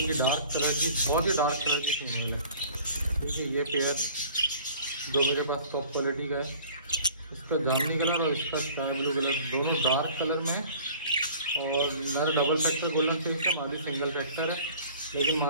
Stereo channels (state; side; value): inverted; both; correlation -0.48